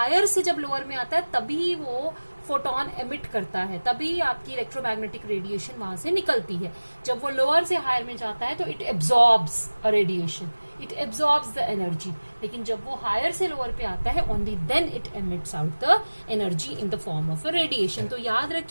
से जब लोअर में आता है तभी वो फोटोन एमिट करता है, तभी आपकी इलेक्ट्रोमैग्नेटिक रेडिएशन वहां से निकलती है। जब वो लोअर से हायर में जाता है तो it absorbs a radiation, it absorbs the energy. लेकिन जब वो हायर से लोअर पे आता है only then it emits out the energy in the form of a radiation. तो याद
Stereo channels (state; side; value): inverted; both; correlation -1.00